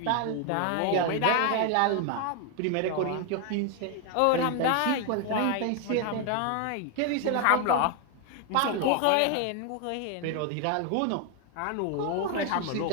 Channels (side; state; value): both; different; correlation 0.01